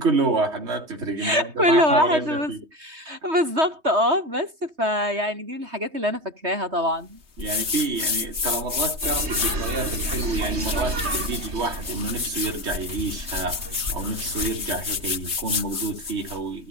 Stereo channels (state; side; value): late; left; 3.2 ms